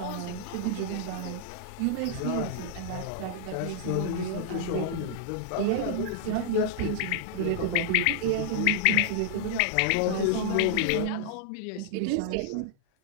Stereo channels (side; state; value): both; different; correlation -0.01